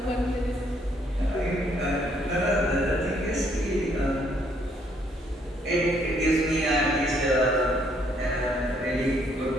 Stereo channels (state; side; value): normal; both; correlation 0.68